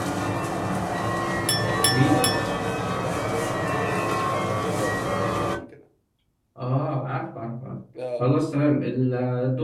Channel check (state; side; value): identical; both; correlation 1.00